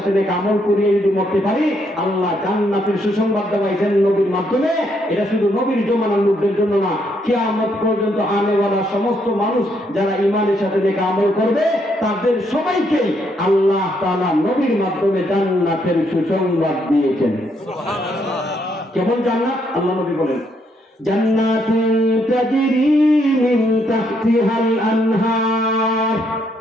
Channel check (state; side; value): normal; both; correlation 0.74